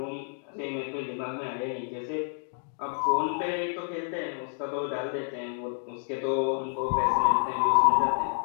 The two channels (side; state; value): right; silent; 58 dB below the other